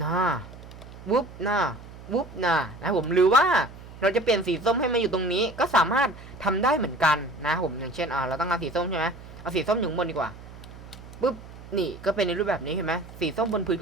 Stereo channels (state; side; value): noise; right; hum, 16 dB below the sound